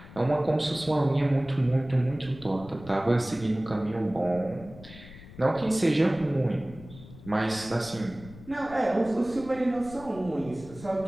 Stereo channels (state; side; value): noise; left; rumble, 18 dB below the sound